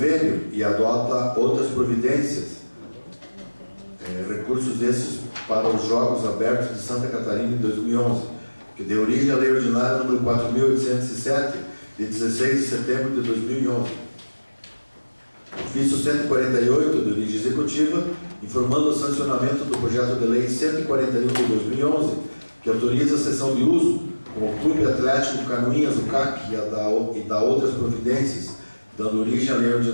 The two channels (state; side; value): inverted; both; correlation -1.00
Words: e adota outras providências, recursos esses para os Jogos Abertos de Santa Catarina em 2011, que deu origem à Lei Ordinária número 4.807, de 16 de setembro de 2011. Ofício 148 de origem executiva, informando o sancionamento do projeto de Lei 141 de 2011, que autoriza a cessão de uso com o Clube Atlético Canoinhas, o CAC, e da outras providências, dando origem à Lei